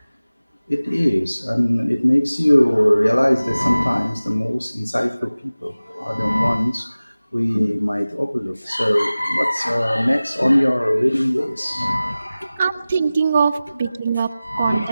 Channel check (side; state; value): both; inverted; correlation -0.97